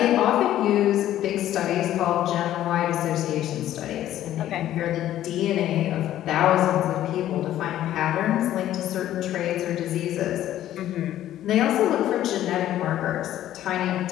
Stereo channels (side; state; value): right; quieter; 12.7 dB